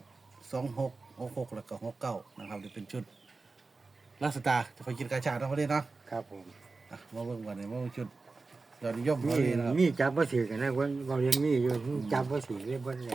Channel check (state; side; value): quieter; left; 3.9 dB